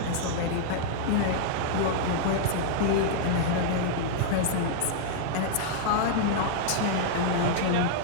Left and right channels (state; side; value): different; both; correlation -0.01